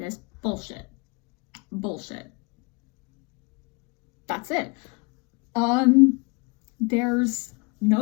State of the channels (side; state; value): right; quieter; 29.9 dB